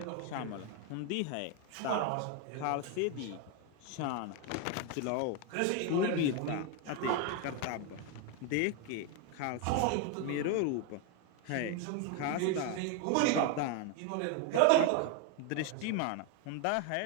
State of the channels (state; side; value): different; both; correlation 0.01